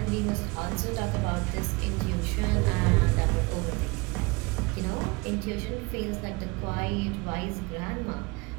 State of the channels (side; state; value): left; quieter; 26.3 dB